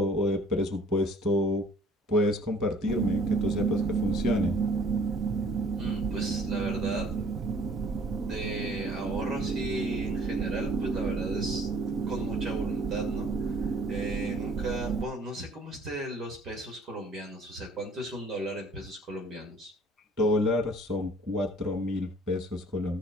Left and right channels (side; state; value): both; normal; correlation 0.56